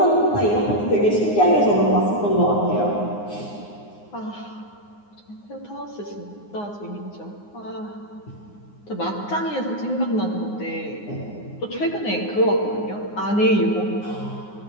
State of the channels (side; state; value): right; late; 9.6 ms